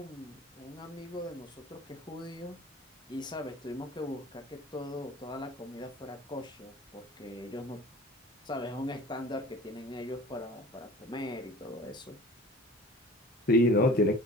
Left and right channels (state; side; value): normal; both; correlation 0.43